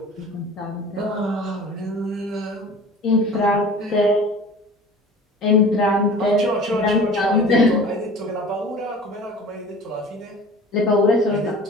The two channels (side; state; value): both; normal; correlation 0.41